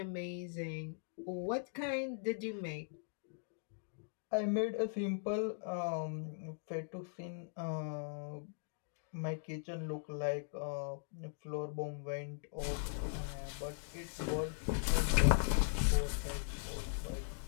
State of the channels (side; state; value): right; silent; digital silence